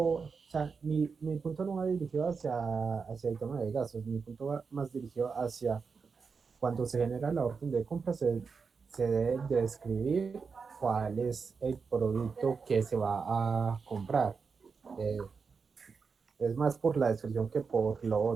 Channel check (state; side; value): quieter; left; 5.3 dB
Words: sea, mi punto no va dirigido hacia el tema de gastos, mi punto va más dirigido hacia cuando se genera la orden de compra, se debe describir cuál es el producto que se va a comprar. Eh, es más por la descripción que por lo